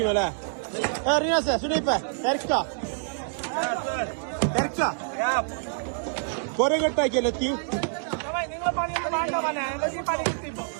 അല്ലേ? റിയാസ സുനൈപ്പ തിരക്ക കൊറേ കെട്ടാക്കിയല്ലേ എത്തി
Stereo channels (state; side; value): silent; left; digital silence